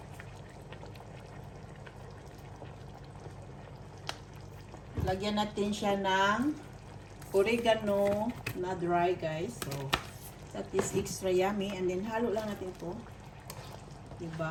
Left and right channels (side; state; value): both; identical; correlation 1.00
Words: Lagyan natin siya ng oregano na dry guys. So, that is extra yummy. And then, halo lang natin to.